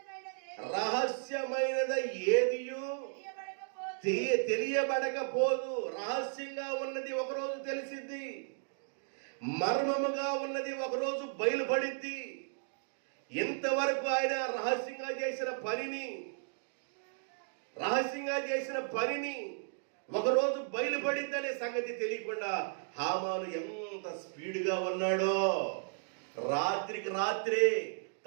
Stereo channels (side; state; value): left; silent; digital silence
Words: రహస్యమైనది ఏదియు తెలియబడకపోదు. రహస్యంగా ఉన్నది ఒకరోజు తెలిసిద్ది, మర్మముగా ఉన్నది ఒకరోజు బయలుపడిద్ది. ఇంతవరకు ఆయన రహస్యంగా చేసిన పనిని ఒకరోజు బయలుపడిద్దనే సంగతి తెలియకుండా హామాను ఎంత స్పీడ్గా ఉన్నాడో. రాత్రికి రాత్రే